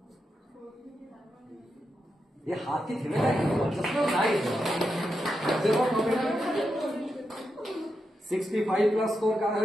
ये हाथ की थी ना, चश्मा नहीं देखो। 65+ स्कोर কার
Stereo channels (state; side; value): normal; both; correlation 0.86